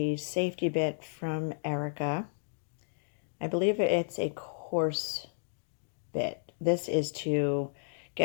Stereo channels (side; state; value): right; silent; digital silence